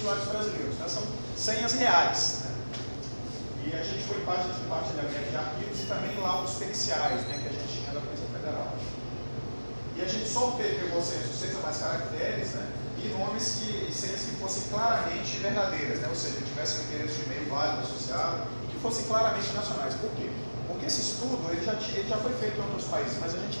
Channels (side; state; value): both; inverted; correlation -1.00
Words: brasileiros. Tá? São senhas reais. Né? E a gente foi parte de compartilhamento de arquivos e também laudos periciais, né, que a gente tinha da Polícia Federal. E a gente só pegou senhas de 6 ou mais caracteres, né, e nomes e senhas que fossem claramente verdadeiras, né, ou seja, que tivessem um endereço de e-mail válido associado e que fossem claramente nacionais. Por quê? Porque esse estudo ele já foi feito em outros países, mas a gente